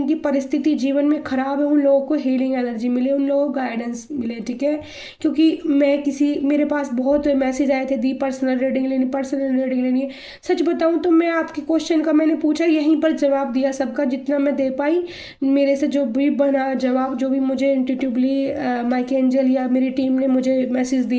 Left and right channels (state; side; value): identical; both; correlation 1.00